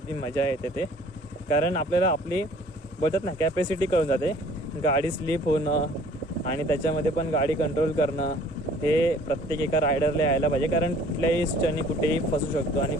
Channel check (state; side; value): normal; both; correlation 0.53